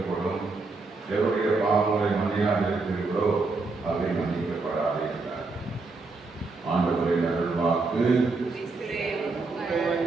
எவருடைய பாவங்களை மன்னியாதிருக்கிறீர்களோ அவை மன்னிக்கப்படாது என்றார். ஆண்டவரின் அருள்வாக்கு.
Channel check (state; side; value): quieter; left; 3.8 dB